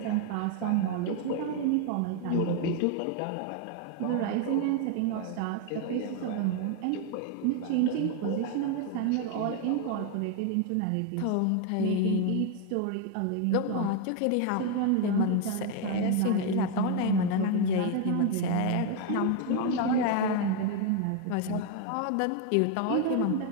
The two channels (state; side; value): different; both; correlation 0.01